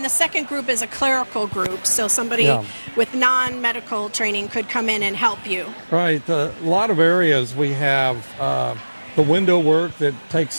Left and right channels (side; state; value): both; inverted; correlation -1.00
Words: the second group is a clerical group, so somebody Yeah. with non-medical training could come in and help you. Right. A lot of areas we have the window work that